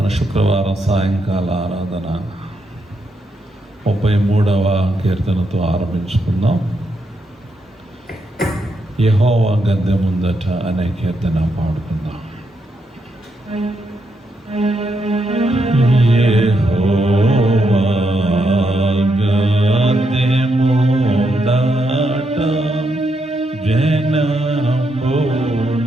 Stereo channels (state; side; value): normal; both; correlation 0.80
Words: శుక్రవారం సాయంకాల ఆరాధన 33వ కీర్తనతో ఆరంభించుకుందాం. యెహోవా గద్దె ముందట అనే కీర్తన పాడుకుందాం. యెహోవా గద్దె ముందట జనములారమ్రోకుడి,